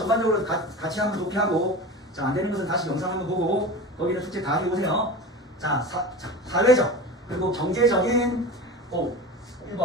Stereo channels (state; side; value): normal; both; correlation 0.31